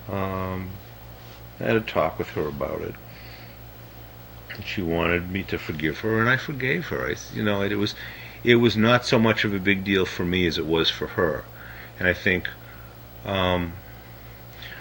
I had a talk with her about it. She wanted me to forgive her, and I forgave her. It was not so much of a big deal for me as it was for her, and I think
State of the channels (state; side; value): identical; both; correlation 1.00